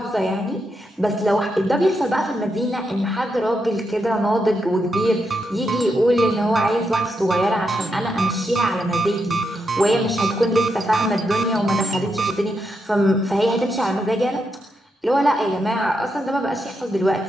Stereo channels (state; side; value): normal; both; correlation 0.83